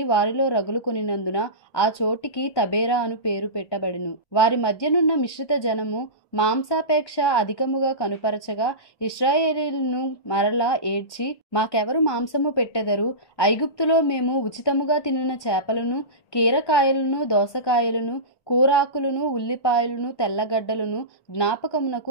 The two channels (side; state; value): right; late; 1.1 ms